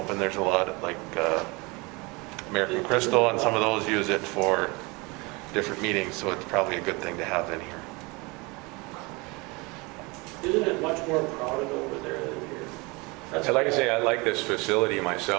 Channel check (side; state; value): left; quieter; 26.3 dB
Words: There's a lot of, like American Crystal and some of those use it for different meetings, so it's probably a good thing to have in here. Isn't it much more crowded over there than here? That's Like I say, I like this facility